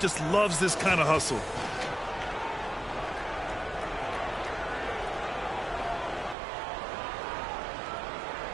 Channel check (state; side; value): drops out; left; at 6.4 s